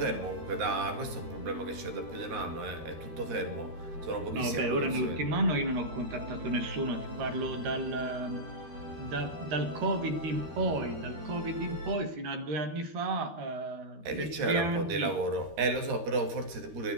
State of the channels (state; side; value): late; left; 13 ms